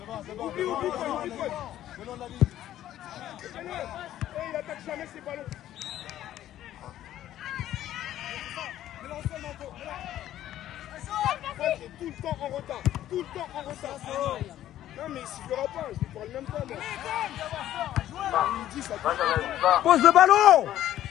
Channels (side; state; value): right; quieter; 12.6 dB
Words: Oublie. Venons de la ligne. Il attaque jamais ses ballons. Il est tout le temps en retard. Non, mais il sifflera pas, je lui parle même pas. Il dit ça. Pose le ballon.